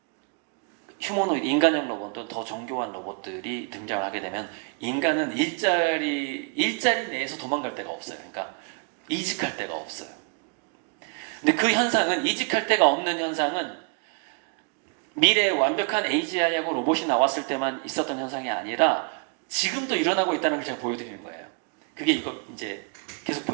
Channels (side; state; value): left; quieter; 38.1 dB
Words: 휴머노이드, 인간형 로봇도 더 정교한 로봇들이 등장하게 되면 인간은 일자리 내에서 도망갈 데가 없어요. 그러니까 이직할 데가 없어요. 근데 그 현상은, 이직할 데가 없는 현상은 미래에 완벽한 AGI하고 로봇이 나왔을 때만 있었던 현상이 아니라 지금도 일어나고 있다는 걸 제가 보여드리는 거예요. 그게 이거 이제 계속